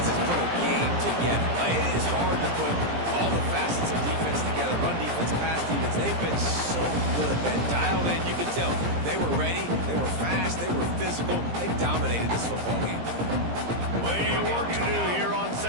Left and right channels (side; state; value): left; late; 17 ms